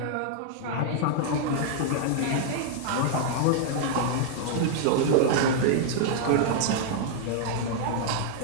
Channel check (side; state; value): both; different; correlation -0.01